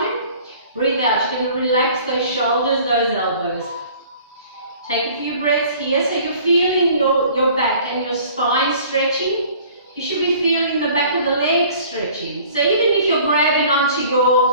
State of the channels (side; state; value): both; inverted; correlation -0.51